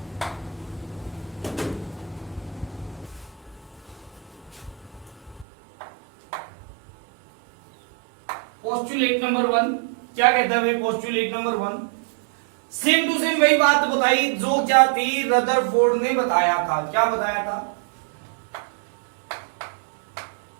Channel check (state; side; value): drops out; left; at 5.5 s